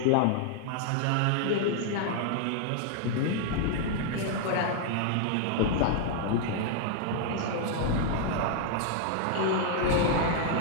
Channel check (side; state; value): both; different; correlation 0.00